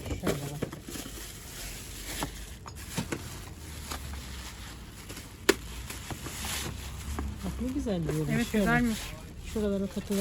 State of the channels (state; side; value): identical; both; correlation 1.00